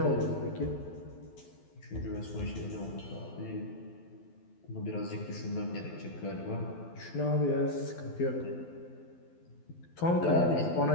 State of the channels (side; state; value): right; late; 12 ms